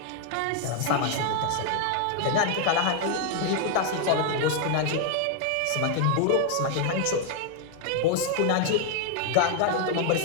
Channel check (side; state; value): both; different; correlation 0.00